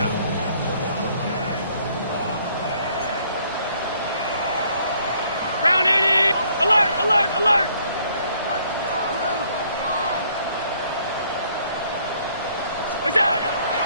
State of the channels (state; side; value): inverted; both; correlation -0.64